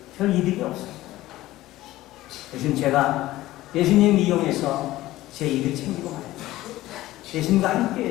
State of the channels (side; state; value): right; quieter; 16.4 dB